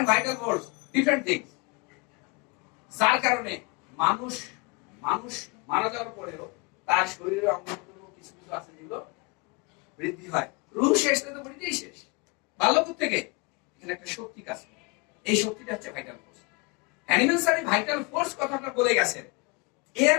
vital force different things. যার কারণে মানুষ মারা যাওয়ার পরেও তার শরীরে অঙ্গ কিছু কিছু আছে যেগুলো বৃদ্ধি হয়। রুহ শেষ তো বৃদ্ধিই শেষ। বাল্যকাল থেকে এখানে একটা শক্তি কাজ করে, এই শক্তিটা হচ্ছে vital force. Hahnemann sir vital force কথাটা বলে গেছেন। এর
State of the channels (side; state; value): right; quieter; 29.9 dB